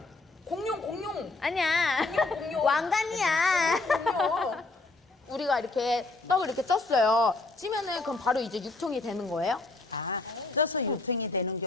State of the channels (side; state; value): right; quieter; 3.3 dB